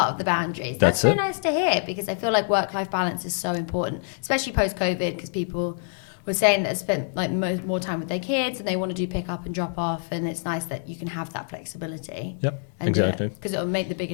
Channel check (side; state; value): right; silent; 61 dB below the other